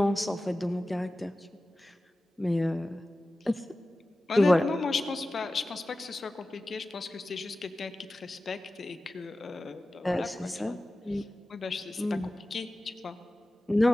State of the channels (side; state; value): both; normal; correlation 0.95